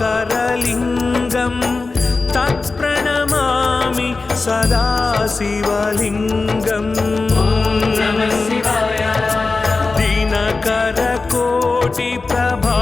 तत्प्रणमामि सदा शिवलिङ्गम्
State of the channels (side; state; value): right; quieter; 3.9 dB